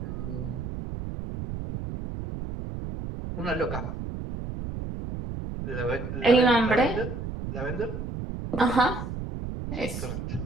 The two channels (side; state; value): right; noise; rumble, 6 dB below the sound